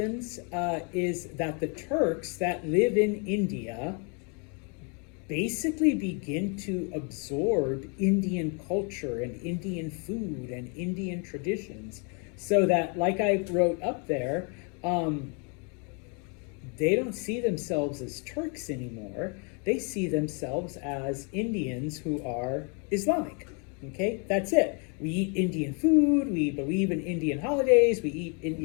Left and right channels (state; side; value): quieter; right; 36.3 dB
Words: is that the Turks that live in India basically begin to absorb Indian culture and Indian food and Indian traditions, so that, like I wrote up there, they don't see themselves as Turks anymore. They see themselves as Indians who are Islamic. Okay, that's it. We eat Indian food, we believe in Indian holidays, we eat